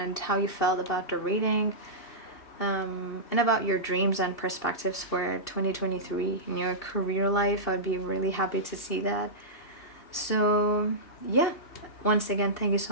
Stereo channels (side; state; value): right; late; 2.7 ms